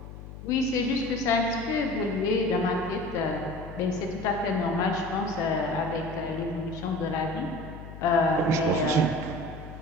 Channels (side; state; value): left; noise; hum, 13 dB below the sound